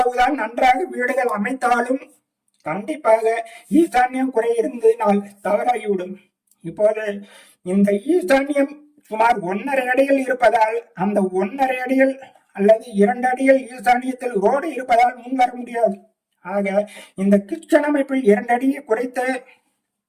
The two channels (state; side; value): identical; both; correlation 1.00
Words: நன்றாக வீடுகள் அமைத்தாலும் கண்டிப்பாக ஈசான்யம் குறை இருந்ததினால் தவறாகிவிடும். இப்போது இந்த ஈசான்யம் சுமார் 1.5 அடிகள் இருப்பதால் அந்த 1.5 அடிகள் அல்லது 2 அடிகள் ஈசானியத்தில் ரோடு இருப்பதால் முன் வர முடியாது. ஆக இந்த கிச்சன் அமைப்பில் 2 அடியை குறைத்து